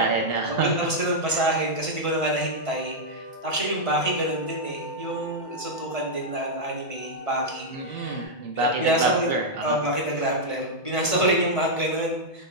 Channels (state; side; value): late; right; 1.5 ms